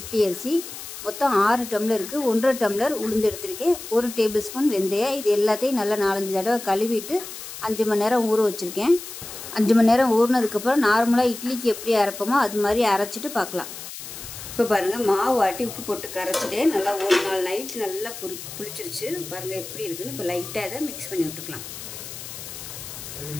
அரிசி, மொத்தம் 6 டம்ளருக்கு 1.5 டம்ளர் உளுந்து எடுத்திருக்கேன். 1 டேபிள் ஸ்பூன் வெந்தயம். இது எல்லாத்தையும் நல்லா 4-5 தடவை கழுவிட்டு 5 மணி நேரம் ஊற வச்சுருக்கேன். 5 மணி நேரம் ஊறினதுக்கப்புறம் நார்மலாக இட்லிக்கு எப்படி அரைப்போமோ அது மாதிரி அரைச்சிட்டு பார்க்கலாம். இப்போ பாருங்கள், மாவு ஆட்டி உப்பு போட்டு கரைச்சிட்டேன். நல்லா ஒரு நாள் நைட் நல்லா புளிச்சிருச்சு. பாருங்கள் எப்படி இருக்குன்னு. இப்போ லைட்டாக இதை மிக்ஸ் பண்ணி விட்டுக்கலாம்.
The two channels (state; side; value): noise; left; hiss, 11 dB below the sound